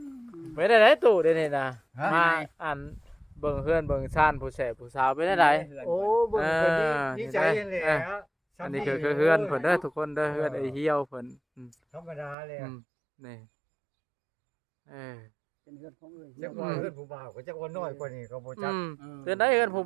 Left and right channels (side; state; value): left; drops out; at 12.4 s